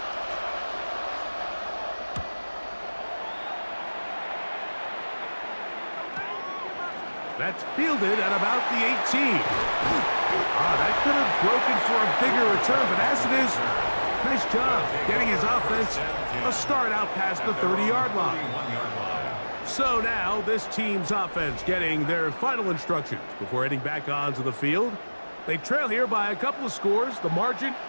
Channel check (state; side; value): inverted; both; correlation -1.00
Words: That's fielded at about the 18. That could have broken for a bigger return, but as it is, nice job getting his offense a start out past the 30-yard line. So now this team's offense getting their final instructions before heading back onto the field. They trail here by a couple of scores. The margin